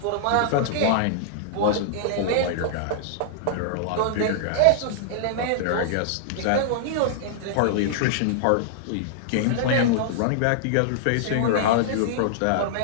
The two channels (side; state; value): both; different; correlation -0.02